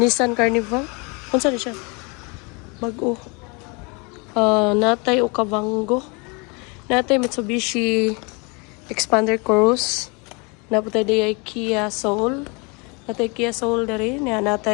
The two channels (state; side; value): quieter; right; 30.5 dB